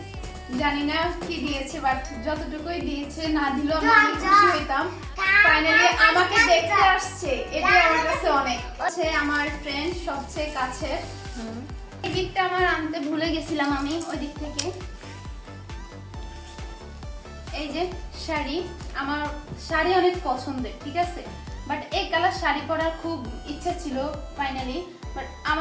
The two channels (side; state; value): both; identical; correlation 1.00